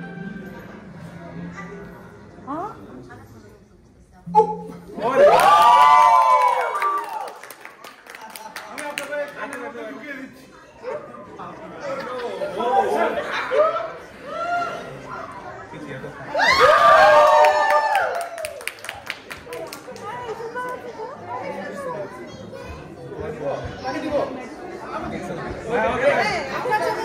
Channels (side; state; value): both; identical; correlation 1.00